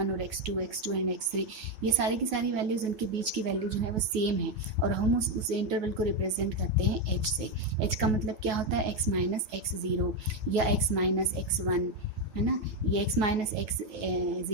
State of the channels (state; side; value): late; left; 9.3 ms